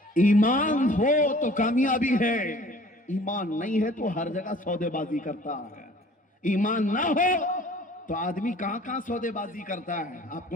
ایمان ہو تو کامیابی ہے, ایمان نہیں ہے تو ہر جگہ سودے بازی کرتا ہے. ایمان نہ ہو تو آدمی کہاں کہاں سودے بازی کرتا ہے. آپ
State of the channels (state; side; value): normal; both; correlation 0.50